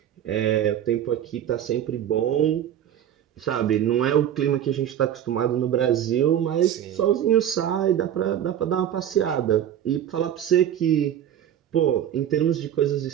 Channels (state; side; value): quieter; left; 10.4 dB